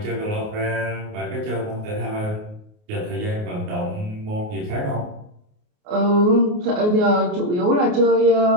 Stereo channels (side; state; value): left; late; 28 ms